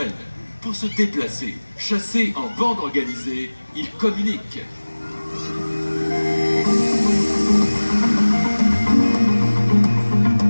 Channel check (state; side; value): inverted; both; correlation -1.00